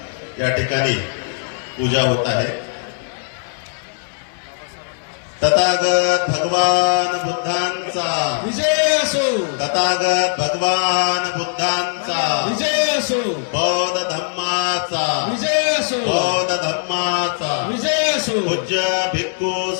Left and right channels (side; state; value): right; silent; 60 dB below the other